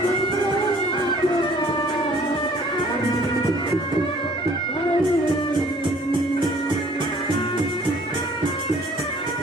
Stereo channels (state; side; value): normal; both; correlation 0.55